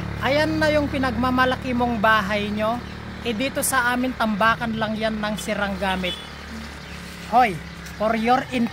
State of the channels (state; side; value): identical; both; correlation 1.00